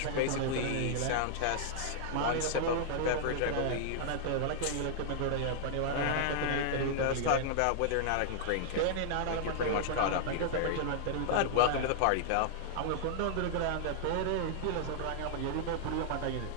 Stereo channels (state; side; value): different; both; correlation -0.01